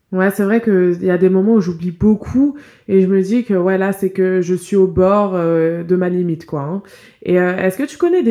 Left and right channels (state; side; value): identical; both; correlation 1.00